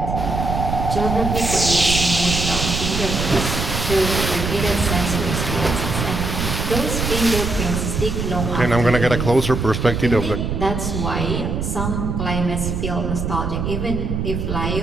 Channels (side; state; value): right; noise; rumble, 2 dB below the sound